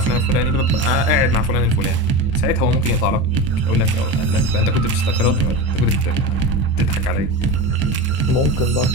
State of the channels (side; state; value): right; late; 23 ms